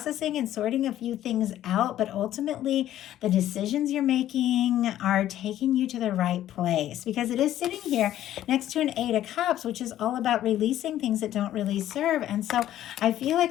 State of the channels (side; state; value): right; quieter; 12.6 dB